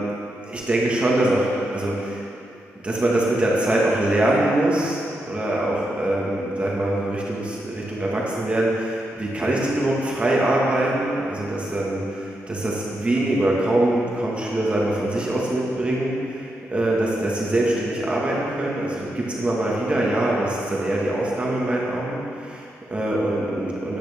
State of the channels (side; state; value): both; normal; correlation 0.84